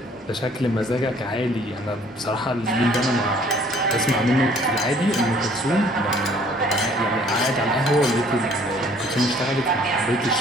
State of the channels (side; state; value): both; normal; correlation 0.57